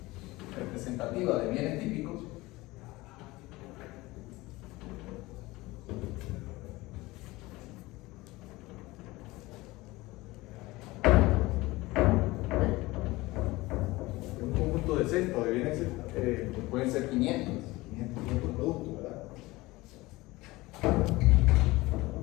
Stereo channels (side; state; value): right; quieter; 20.4 dB